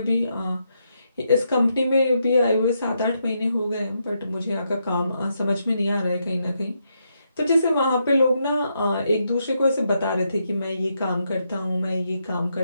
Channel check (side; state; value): both; inverted; correlation -0.81